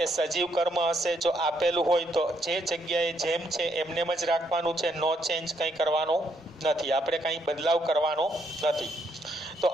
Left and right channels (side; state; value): both; normal; correlation 0.74